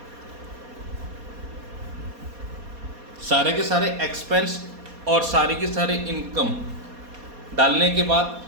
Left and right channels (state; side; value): late; left; 4.2 ms